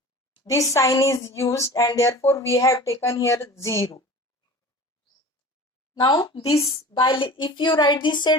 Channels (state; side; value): normal; both; correlation 0.39